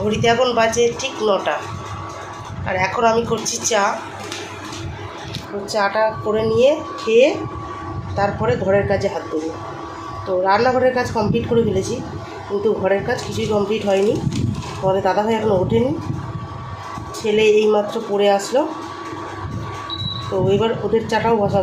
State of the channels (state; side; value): identical; both; correlation 1.00